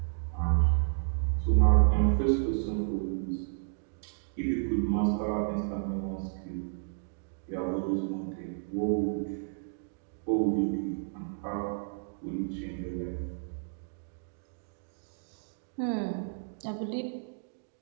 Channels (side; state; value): left; silent; digital silence